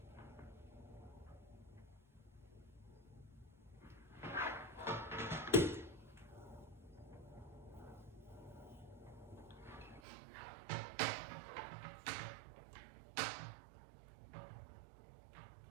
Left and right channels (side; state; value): left; drops out; at 10.0 s